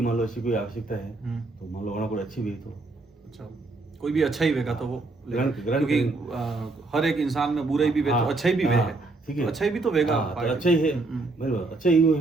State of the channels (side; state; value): left; quieter; 3.3 dB